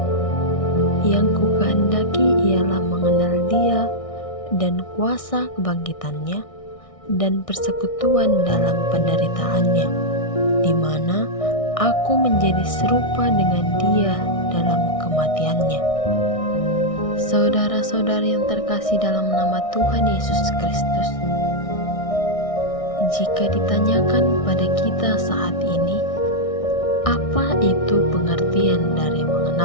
Yang kukehendaki ialah mengenal Dia dan kuasa kebangkitannya dan persekutuan dalam penderitaannya, di mana aku menjadi serupa dengan Dia dalam kematiannya. Saudara-saudari yang terkasih dalam nama Tuhan Yesus Kristus, jika ditanyakan pada kita saat ini, apa itu pengertian dari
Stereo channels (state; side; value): late; right; 1.6 ms